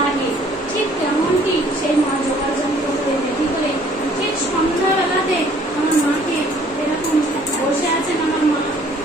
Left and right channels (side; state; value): both; normal; correlation 0.58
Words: ঠিক তেমনটি সেই মা জোগাড় যন্ত্র করে রেডি করে ঠিক সন্ধ্যাবেলাতে আমার মাকে এরকম বসে আছেন, আমার মা